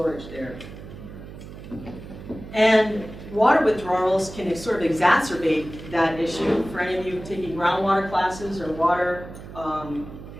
there. And water withdrawals can sort of exacerbate that issue. For any of you taking groundwater classes or water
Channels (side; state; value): right; noise; hum, 14 dB below the sound